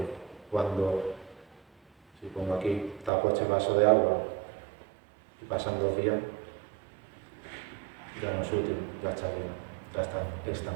cuando, si pongo aquí, tapo este vaso de agua y pasan 2 días, ya no es útil, ya está llena, ya está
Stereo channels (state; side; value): drops out; left; at 3.1 s